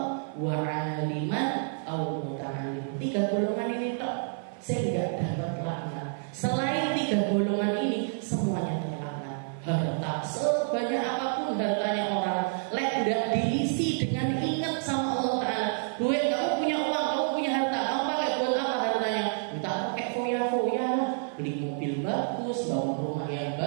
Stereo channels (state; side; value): silent; left; 58 dB below the other